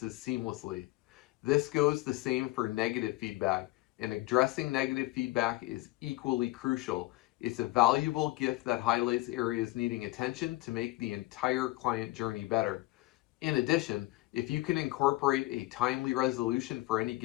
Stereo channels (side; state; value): right; quieter; 19.6 dB